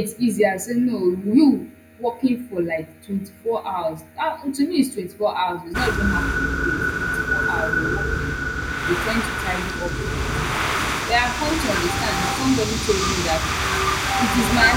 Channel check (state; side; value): identical; both; correlation 1.00